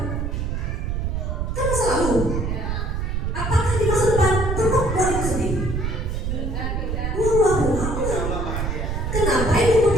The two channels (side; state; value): right; noise; rumble, 1 dB below the sound